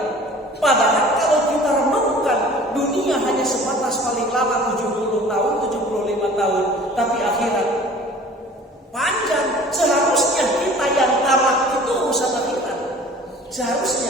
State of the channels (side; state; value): both; normal; correlation 0.46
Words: Padahal kalau kita renungkan, dunia hanya sebatas paling lama 70 tahun, 75 tahun. Tapi akhirat panjang. Seharusnya kita yang tamak itu urusan akhirat.